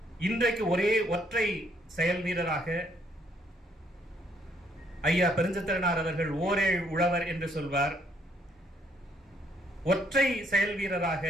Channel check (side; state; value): both; normal; correlation 0.68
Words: இன்றைக்கு ஒரே ஒற்றை செயல் வீரராக ஐயா பெருஞ்சித்திரனார் அவர்கள் ஓரேழ் உழவர் என்று சொல்வார். ஒற்றை செயல் வீரராக